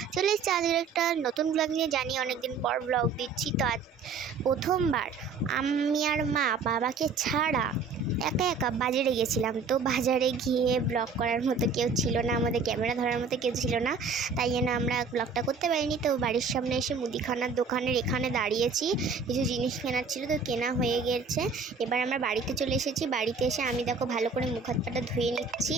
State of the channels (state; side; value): quieter; left; 4.9 dB